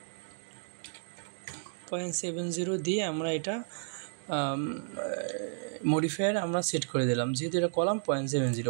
0.70 দিয়ে আমরা এটা মডিফায়ার আমরা সেট করে দিলাম, যেহেতু এটা কলাম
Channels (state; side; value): silent; left; digital silence